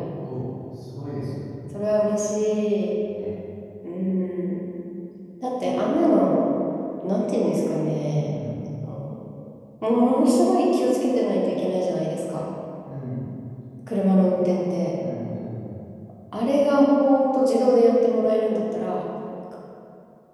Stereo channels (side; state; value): both; identical; correlation 1.00